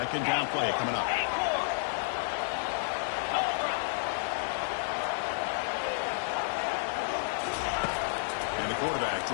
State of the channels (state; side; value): silent; right; digital silence